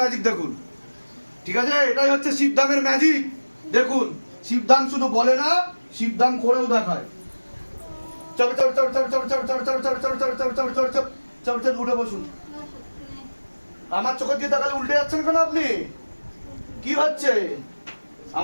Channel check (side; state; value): both; inverted; correlation -1.00